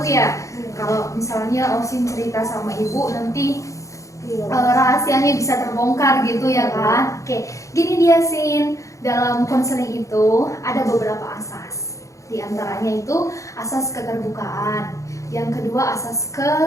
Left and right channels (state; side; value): late; right; 0.15 ms